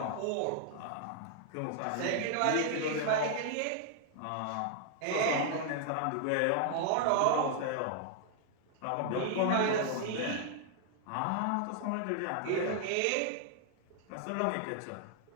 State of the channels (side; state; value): both; different; correlation 0.00